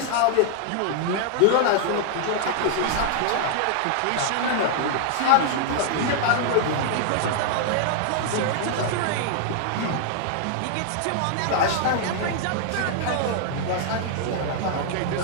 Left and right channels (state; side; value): different; both; correlation 0.00